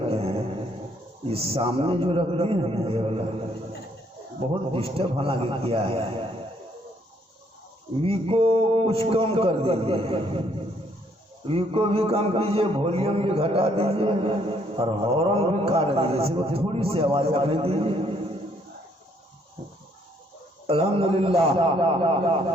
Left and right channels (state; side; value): normal; both; correlation 0.67